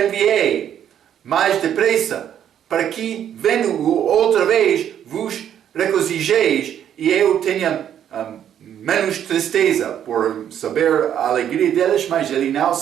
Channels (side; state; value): left; quieter; 9.8 dB